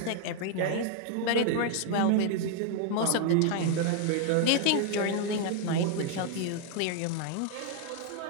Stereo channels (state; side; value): different; both; correlation 0.00